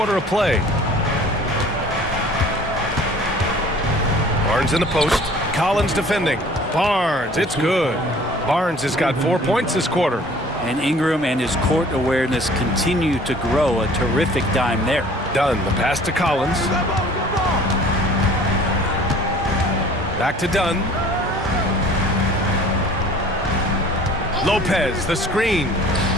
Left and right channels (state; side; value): normal; both; correlation 0.50